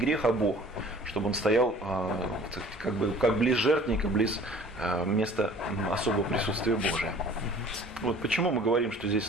а Бог, чтобы он стоял как близ жертвенника, близ места особого присутствия Божия. Вот почему мы говорим, что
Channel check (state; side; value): normal; both; correlation 0.49